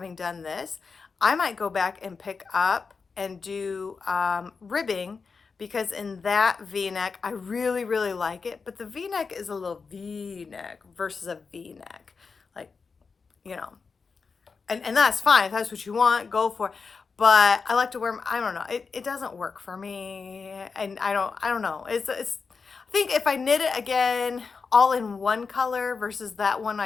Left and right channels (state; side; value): quieter; right; 5.0 dB